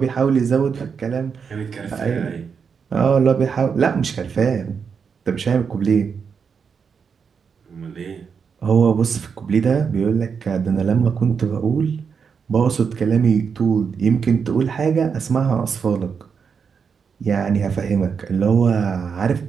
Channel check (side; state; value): left; quieter; 6.2 dB